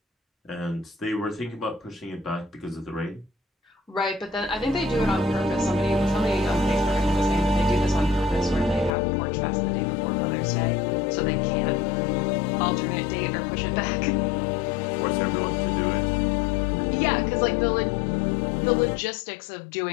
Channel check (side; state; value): right; drops out; at 8.9 s